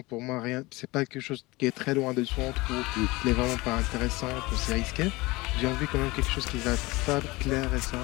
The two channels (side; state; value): right; quieter; 22.3 dB